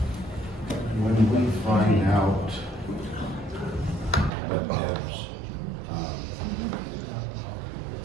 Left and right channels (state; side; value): drops out; left; at 4.3 s